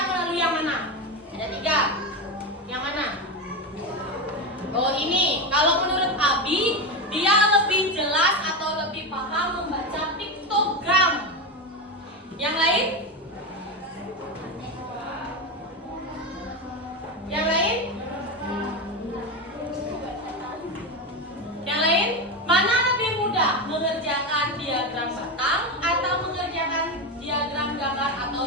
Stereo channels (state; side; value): normal; both; correlation 0.16